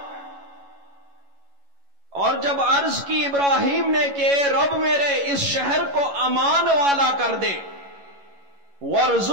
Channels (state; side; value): late; left; 11 ms